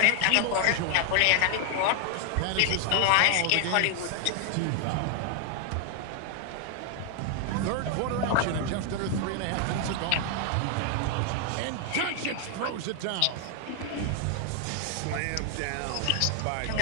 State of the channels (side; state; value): both; different; correlation 0.00